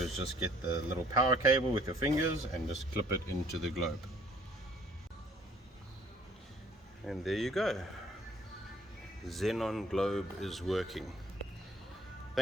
just get the little power cable with your fingers and just clip it into the globe. And there you go. Xenon globe is working.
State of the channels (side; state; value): both; normal; correlation 0.58